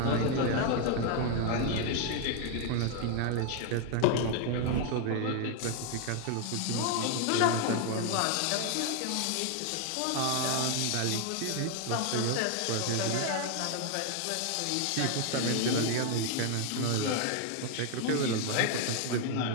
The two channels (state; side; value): different; both; correlation 0.00